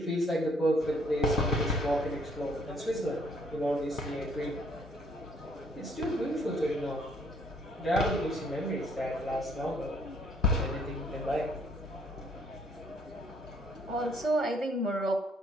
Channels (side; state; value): both; normal; correlation 0.64